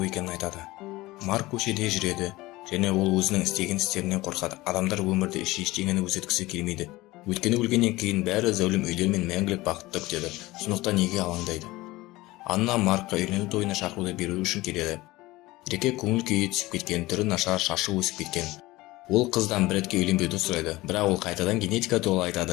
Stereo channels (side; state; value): right; quieter; 19.4 dB